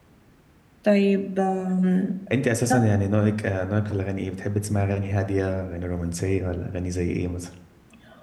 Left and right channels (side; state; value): both; identical; correlation 1.00